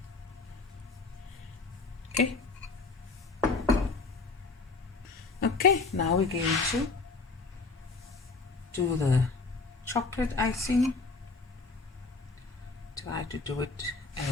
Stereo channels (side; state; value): right; quieter; 4.0 dB